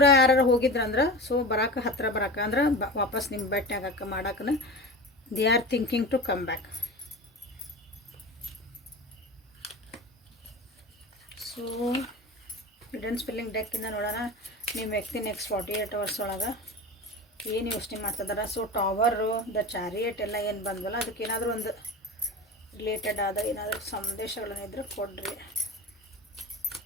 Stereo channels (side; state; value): both; normal; correlation 0.30